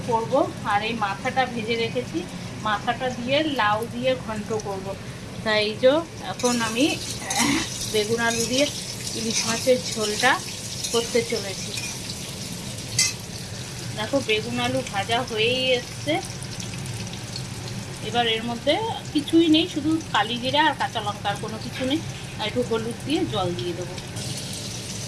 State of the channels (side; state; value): both; identical; correlation 1.00